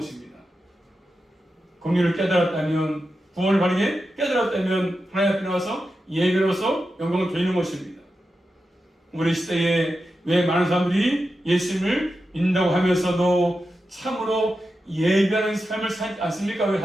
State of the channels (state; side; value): normal; both; correlation 0.90